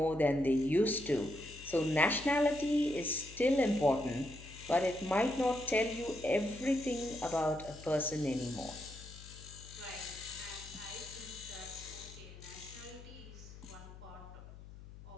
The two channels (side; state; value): left; noise; hum, 16 dB below the sound